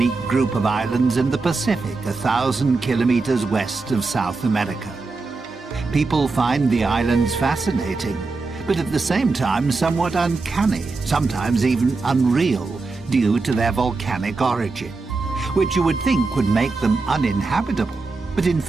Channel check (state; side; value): quieter; left; 3.9 dB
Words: group of islands in the Pacific, 1,000 kilometers west of South America. People find the islands fascinating, but at the same time somewhat uncanny, sometimes even unreal, due to their volcanic origin, which you would think would make them uninhabitable. But in